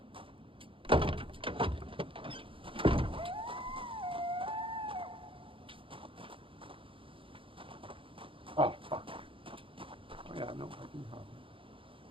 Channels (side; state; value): left; late; 0.25 ms